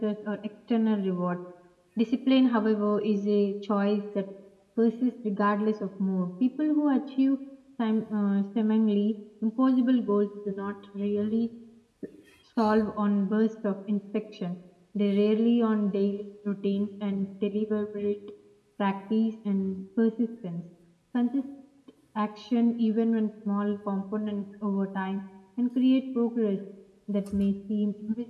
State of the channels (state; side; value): identical; both; correlation 1.00